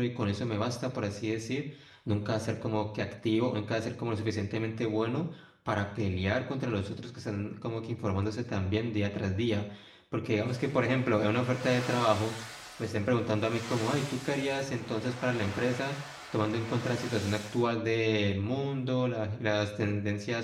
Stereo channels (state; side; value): identical; both; correlation 1.00